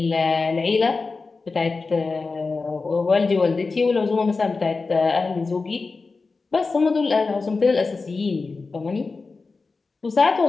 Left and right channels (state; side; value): quieter; right; 4.1 dB